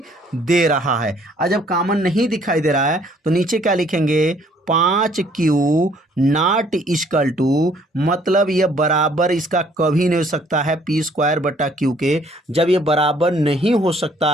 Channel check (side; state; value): both; normal; correlation 0.62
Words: दे रहा है। और जब कॉमन नहीं दिखाई दे रहा है तो नीचे क्या लिखेंगे, 5Q नॉट इक्वल टू, मतलब ये बराबर इसका कभी नहीं हो सकता है P² बटा Q के। जब ये बराबर नहीं हो